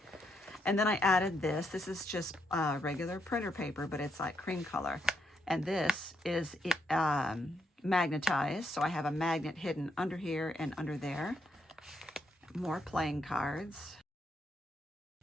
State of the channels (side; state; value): both; normal; correlation 0.78